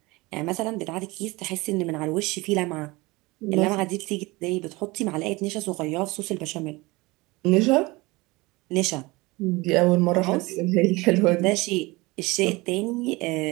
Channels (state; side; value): quieter; left; 22.9 dB